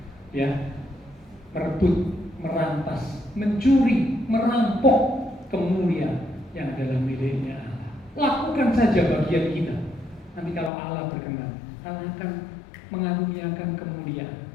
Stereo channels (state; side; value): drops out; right; at 10.7 s